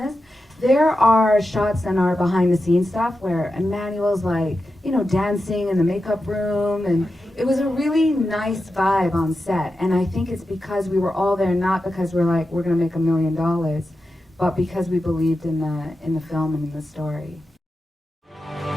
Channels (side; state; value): both; normal; correlation 0.90